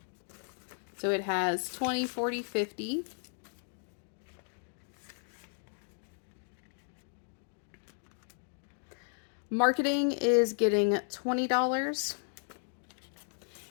So it has 20, 40, 50. Marketing is getting $20.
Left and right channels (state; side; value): silent; right; digital silence